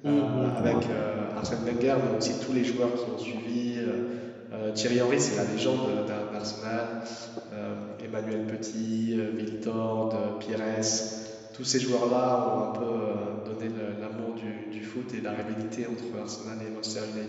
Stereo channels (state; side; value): identical; both; correlation 1.00